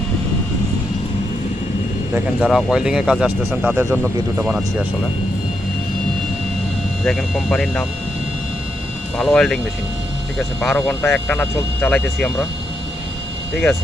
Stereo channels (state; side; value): normal; both; correlation 0.81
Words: দেখেন যারা ওয়েল্ডিংয়ের কাজে আসতেছেন তাদের জন্য ভিডিওটা বানাচ্ছি আসলে। দেখেন কোম্পানির নাম ভালো ওয়েল্ডিং মেশিন, ঠিক আছে। 12 ঘন্টা একটানা চালাইতেছি আমরা, ঠিক